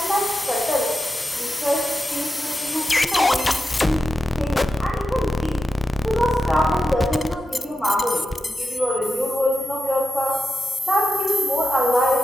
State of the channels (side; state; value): both; normal; correlation 0.90